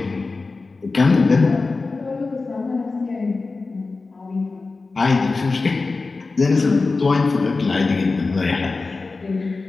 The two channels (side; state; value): right; quieter; 3.8 dB